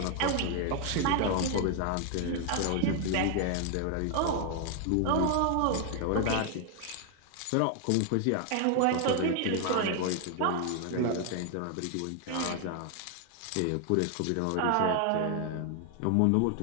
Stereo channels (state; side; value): different; both; correlation 0.00